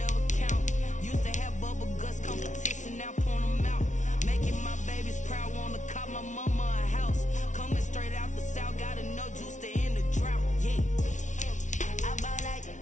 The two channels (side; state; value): right; late; 0.36 ms